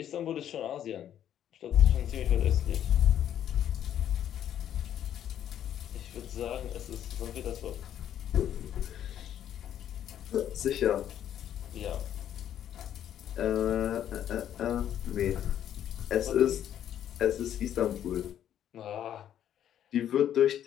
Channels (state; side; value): quieter; right; 10.5 dB